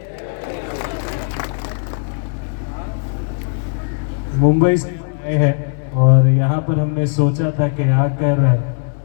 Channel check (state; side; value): silent; right; digital silence